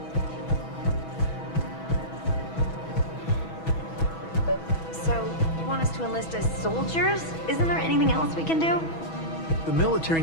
So, you want us to enlist as soldiers? Isn't there anything else we can do? The military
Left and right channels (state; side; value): late; right; 6.2 ms